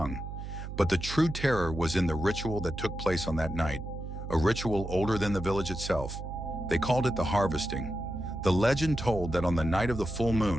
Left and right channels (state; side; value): noise; right; hum, 8 dB below the sound